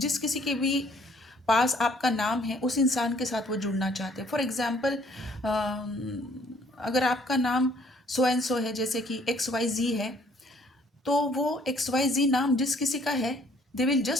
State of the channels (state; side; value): normal; both; correlation 0.61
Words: किसी के भी पास आपका नाम है उस इंसान के साथ वो जुड़ना चाहते हैं। फॉर एग्ज़ाम्पल अगर आपका नाम सो एंड सो है, जैसे कि एक्स वाई जी है, तो वो एक्स वाई जी नाम जिस किसी का है, they will